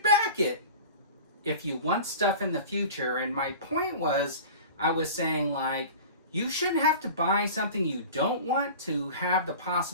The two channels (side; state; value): both; inverted; correlation -0.37